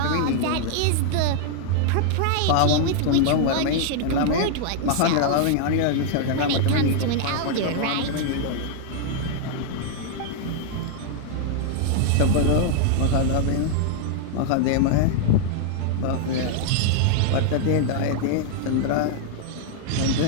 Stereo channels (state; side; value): different; both; correlation 0.00